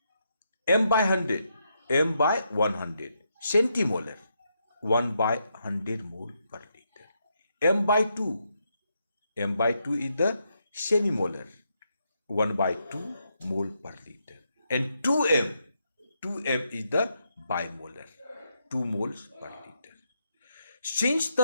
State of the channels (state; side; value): inverted; both; correlation -0.80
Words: M by 100, M by 100 centimolar, 1 by 100 mole per liter. M by 2, M by 2 is the semimolar, 1 by 2 mole per liter. And 2m is the bimolar, 2 moles per liter. Since